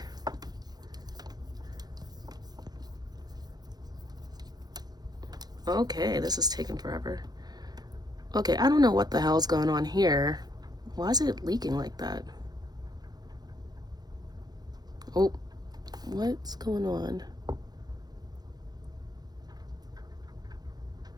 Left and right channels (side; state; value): left; late; 0.19 ms